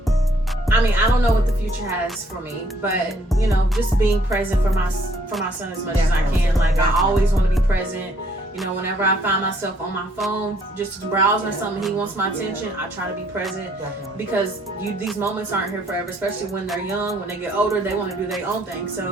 mean, I don't know what the future has for me, but you know, just being present for my son as much as I can. Like I always want to be present. You know, whenever I find myself on my phone just browsing or something, he wants my attention, I try to be present. Definitely. Because these moments aren't here forever, especially when they're young. When they get older, they want to do their own thing.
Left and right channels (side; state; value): both; normal; correlation 0.65